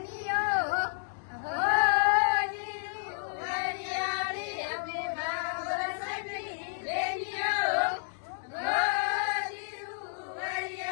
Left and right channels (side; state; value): right; silent; digital silence